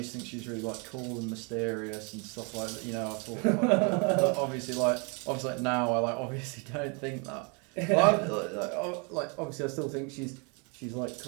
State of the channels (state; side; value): quieter; left; 34.0 dB